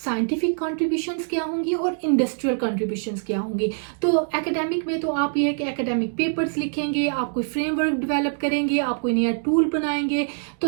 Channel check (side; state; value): left; silent; digital silence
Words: कंट्रीब्यूशंस क्या होंगी और इंडस्ट्रियल कंट्रीब्यूशंस क्या होंगी। तो एकेडमिक में तो आप ये है कि एकेडमिक पेपर्स लिखेंगे, आप कोई फ्रेमवर्क डेवलप करेंगे, आप कोई नया टूल बनाएंगे।